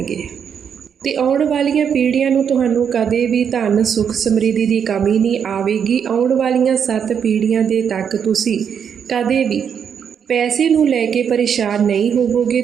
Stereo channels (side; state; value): left; quieter; 7.6 dB